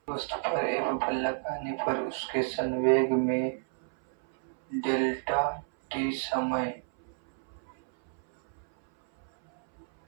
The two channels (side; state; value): left; silent; 58 dB below the other